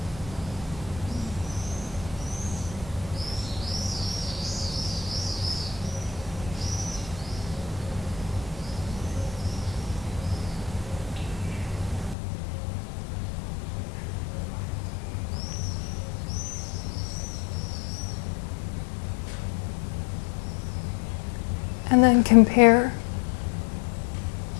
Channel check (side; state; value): right; drops out; at 12.2 s